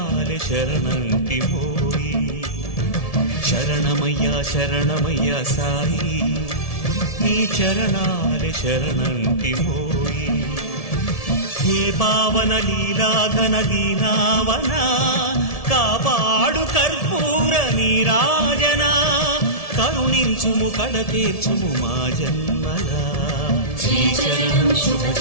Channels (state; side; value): late; right; 1.7 ms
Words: शरणंटिमोई शरणमय्या शरणमय्या साई नी चरणाले शरणंटिमोई हे पावन लीला घन दीनावना कापाडु कर्पूर नीराजना करुणिंचुमु कड़तीर्चुमु मा जन्मला श्रीचरणं